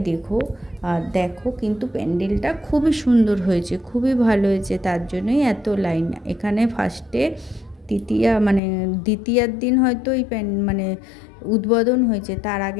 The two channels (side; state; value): right; drops out; at 8.6 s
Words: দেখো। আর দেখো কিন্তু প্যান্ডেলটা খুবই সুন্দর হয়েছে, খুবই ভালো হয়েছে, তার জন্যই এত লাইন। এখানে ফার্স্টে দ্বিতীয়ার দিন হয়তো এই উদ্বোধন হয়েছে। তার